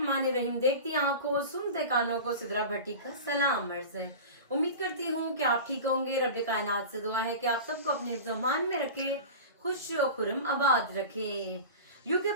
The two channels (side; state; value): both; inverted; correlation -0.32